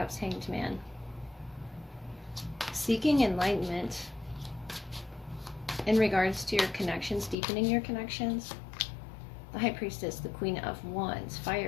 Hanged Man, seeking enlightenment in regards to your connections, deepening your connections, the High Priestess, the Queen of Wands,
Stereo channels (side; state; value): right; drops out; at 7.4 s